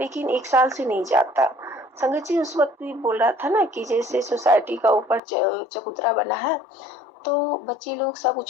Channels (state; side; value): drops out; right; at 5.2 s